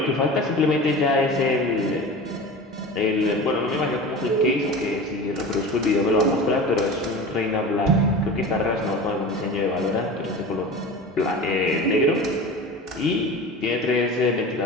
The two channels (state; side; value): normal; both; correlation 0.33